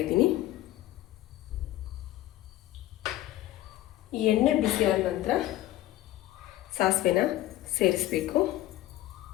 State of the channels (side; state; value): right; quieter; 15.1 dB